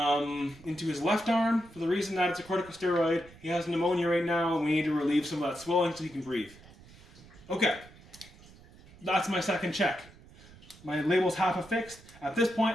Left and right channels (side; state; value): right; noise; rumble, 22 dB below the sound